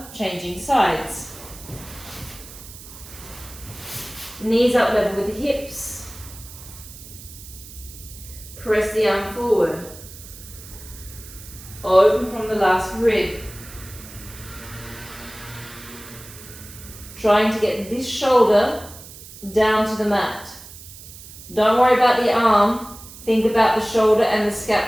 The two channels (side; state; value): right; noise; hiss, 16 dB below the sound